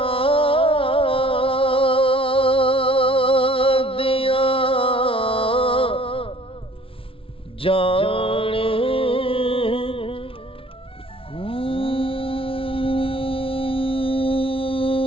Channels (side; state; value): right; late; 0.26 ms